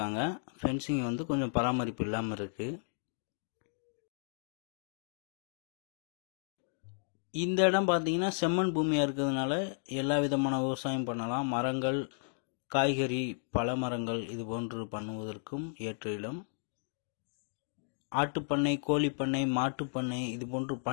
ஃபென்சிங் வந்து கொஞ்சம் பராமரிப்பு இல்லாமல் இருக்கு. இந்த இடம் பார்த்தீங்கன்னா செம்மண் பூமியாக இருக்கிறதுனால எல்லா விதமான விவசாயம் பண்ணலாம். மரங்கள், காய்கறி, பழ மரங்கள் இது போன்று பண்ணுவதற்கும் ஏற்ற இடம். ஆட்டுப்பண்ணை, கோழிப்பண்ணை, மாட்டுப்பண்ணை இது போன்று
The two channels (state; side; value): silent; right; digital silence